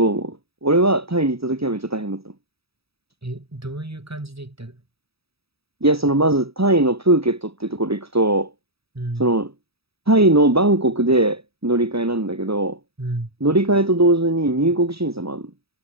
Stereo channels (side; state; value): left; late; 0.77 ms